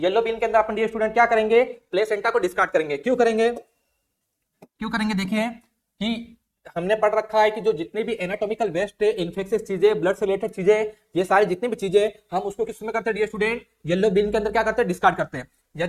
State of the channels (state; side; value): identical; both; correlation 1.00